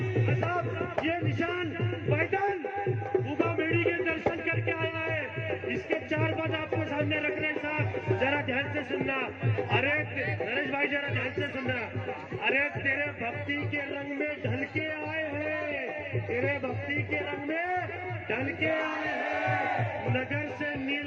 ये निशान पैदल उगा बेड़ी के दर्शन करके आया है। इसके 4 बात आपको सामने रख रहे हैं साहब, जरा ध्यान से सुनना। अरे नरेश भाई जरा ध्यान से सुनना। अरे तेरे भक्ति के रंग में ढल के आए हैं, तेरे भक्ति के रंग में ढल के आए हैं, नगर से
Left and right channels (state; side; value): identical; both; correlation 1.00